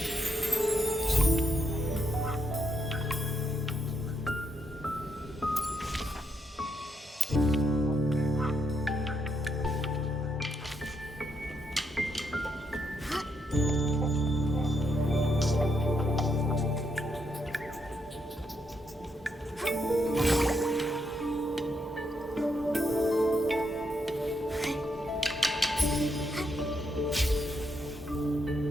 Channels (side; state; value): both; normal; correlation 0.78